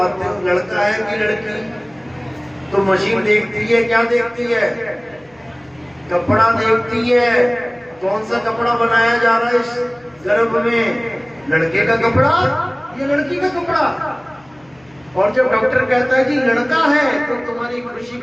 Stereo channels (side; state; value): left; noise; hum, 30 dB below the sound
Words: हो, लड़का है कि लड़की। तो मशीन देखती है, क्या देखती है? कपड़ा देखती है। कौन सा कपड़ा बनाया जा रहा है इस गर्भ में? लड़के का कपड़ा या लड़की का कपड़ा? और जब डॉक्टर कहता है कि लड़का है तो तुम्हारी खुशी